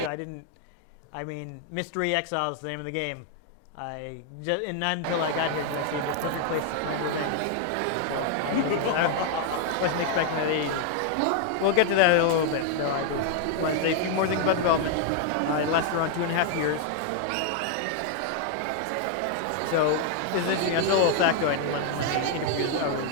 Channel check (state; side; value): different; both; correlation 0.00